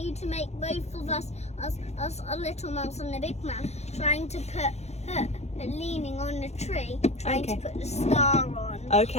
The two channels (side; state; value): right; late; 0.32 ms